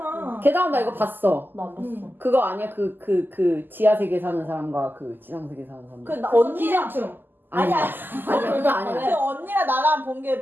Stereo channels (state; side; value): late; left; 0.091 ms